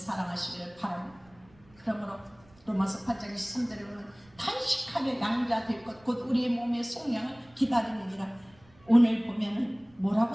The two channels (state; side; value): noise; right; rumble, 28 dB below the sound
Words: 바랍니다. 그러므로 로마서 8장 23절에 보면 탄식하며 양자 될 것 곧 우리의 몸의 속량을 기다리느니라. 오늘 보면은